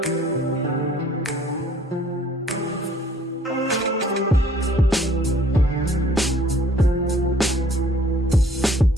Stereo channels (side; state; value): both; normal; correlation 0.58